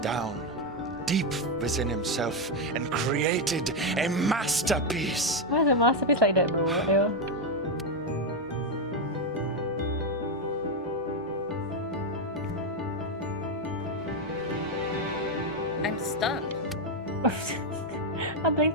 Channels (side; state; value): both; normal; correlation 0.05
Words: down deep within himself and created a masterpiece. Why is a masterpiece like that, bro? Ew. I'm stunned. I'm playing